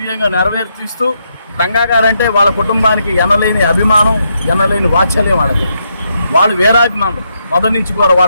నెరవేర్చిస్తూ రంగా గారంటే వాళ్ళ కుటుంబానికి ఎనలేని అభిమానం, ఎనలేని వాత్సల్యం వాళ్ళకి. వాళ్ళు వీరాభిమానులు మొదటి నుంచి కూడా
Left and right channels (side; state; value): both; inverted; correlation -0.79